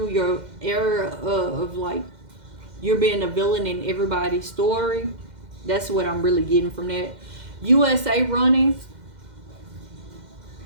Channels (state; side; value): late; left; 2.1 ms